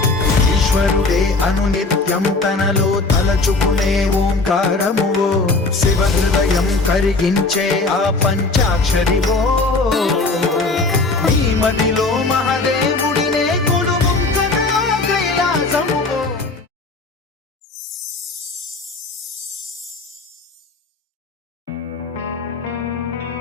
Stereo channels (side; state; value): right; quieter; 3.5 dB